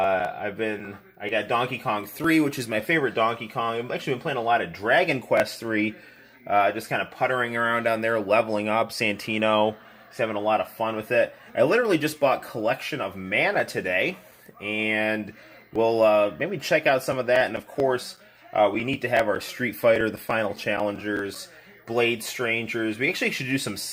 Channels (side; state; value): both; identical; correlation 1.00